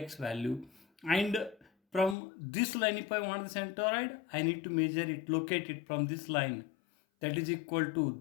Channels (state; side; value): drops out; right; at 2.1 s